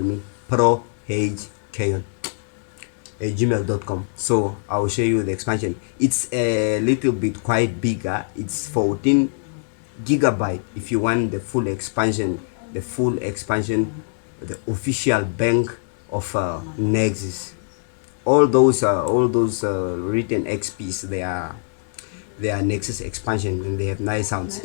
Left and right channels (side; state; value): right; silent; digital silence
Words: prohkayon. gmail.com. So I will show you the expansion. It's a little bit quite bigger. It's 14 gigabyte if you want the full expansion, the official bank of Nexus. All those written XPs, they are Nexus expansion, and they have nice sounds.